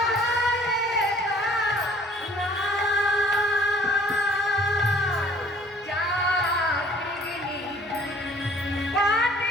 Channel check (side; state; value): both; normal; correlation 0.55